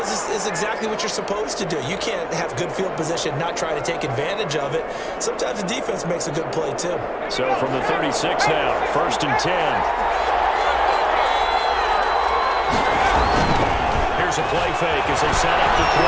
it's exactly what you're supposed to do. You can't have good field position, not try to take advantage of it. Sometimes the defense makes a good play too. So from the 36 now, first and 10. Here's a play fake as they set up the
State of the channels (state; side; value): identical; both; correlation 1.00